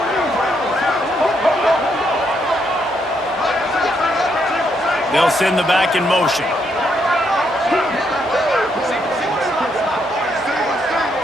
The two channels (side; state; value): both; normal; correlation 0.76